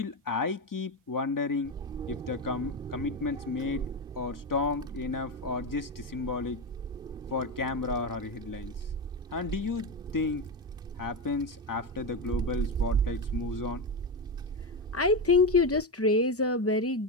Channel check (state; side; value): normal; both; correlation 0.14